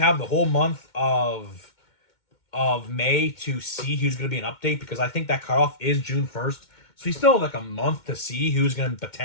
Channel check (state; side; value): late; right; 2.2 ms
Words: the whole month of May to see who's going to be an update, because I think that cutoff is June 1st. So we still have like a month to see who's going to